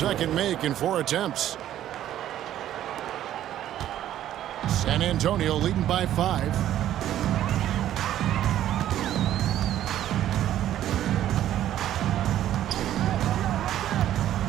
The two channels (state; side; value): quieter; left; 12.1 dB